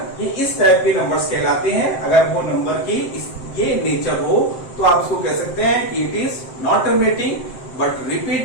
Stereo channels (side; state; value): right; late; 7.7 ms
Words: ये इस टाइप के नंबर्स कहलाते हैं। अगर वो नंबर की ये नेचर हो तो आप इसको कह सकते हैं कि it is not terminating but